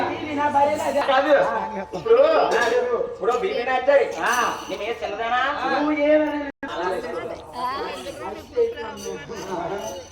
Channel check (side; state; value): both; identical; correlation 1.00